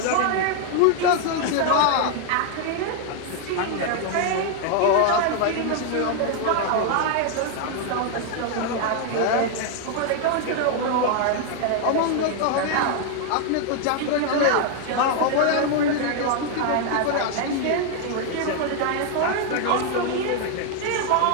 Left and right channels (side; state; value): both; different; correlation 0.00